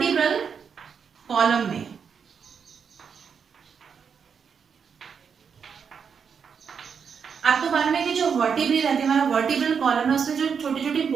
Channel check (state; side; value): quieter; left; 6.6 dB